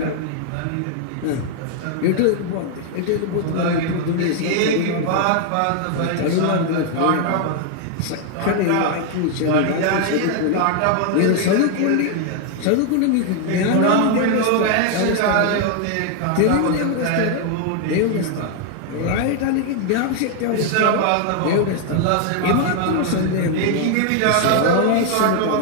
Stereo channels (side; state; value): both; different; correlation 0.00